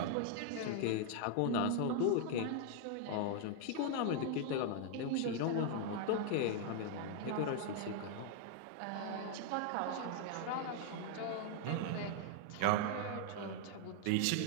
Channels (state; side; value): different; both; correlation 0.00